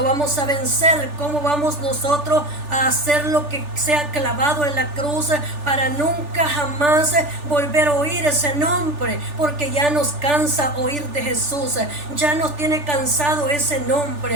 vamos a vencer, cómo vamos nosotros a hacer lo que sea clavado en la cruz para nunca jamás volver a oír ese nombre, porque ya nos cansa oír de Jesús, ya nos tiene cansado ese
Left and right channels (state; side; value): late; left; 3.4 ms